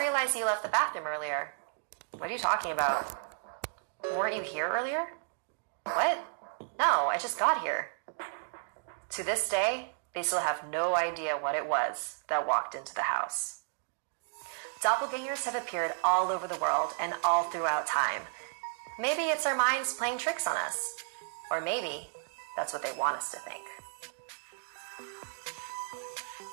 you left the bathroom earlier. What are you talking about? Weren't you here earlier? What? No, I just got here. To this day, they still have no idea what it was that walked into the house. Doppelgangers have appeared all over the world and all throughout time. Maybe it's our minds playing tricks on us. Or maybe that's what they want us to think.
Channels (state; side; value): silent; left; digital silence